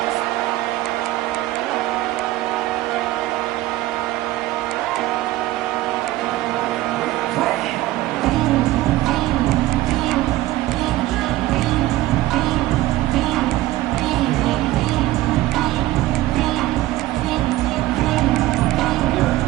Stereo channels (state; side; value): quieter; left; 16.5 dB